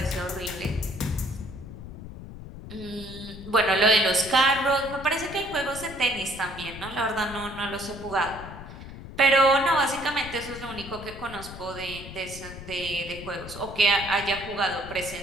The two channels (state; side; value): noise; left; rumble, 13 dB below the sound